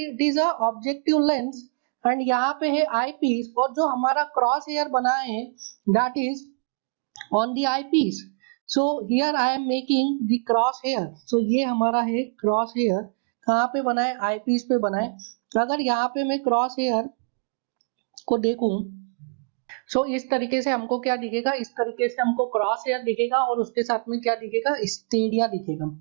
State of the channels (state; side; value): quieter; left; 38.4 dB